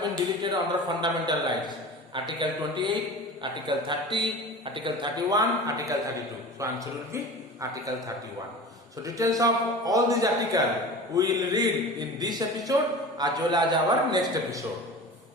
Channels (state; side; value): normal; both; correlation 0.35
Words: been deleted under fundamental rights? Article 28, Article 30, Article 31, Article 32. So answer will be Article 31. So details of all these articles we will read in this episode as well as our next episode.